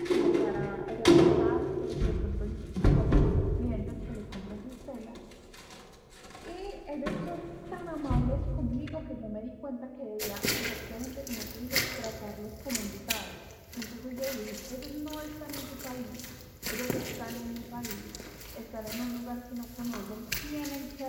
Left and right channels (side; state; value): both; identical; correlation 1.00